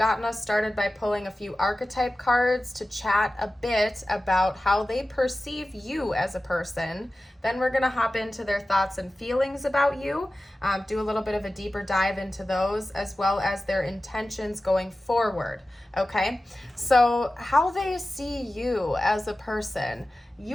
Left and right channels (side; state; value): both; normal; correlation 0.95